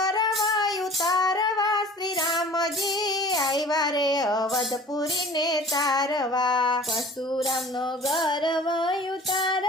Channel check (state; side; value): normal; both; correlation 0.45